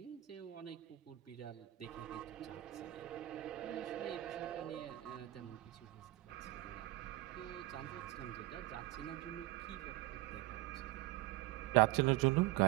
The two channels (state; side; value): quieter; left; 17.3 dB